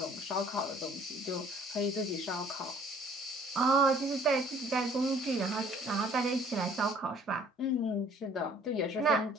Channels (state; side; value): normal; both; correlation 0.56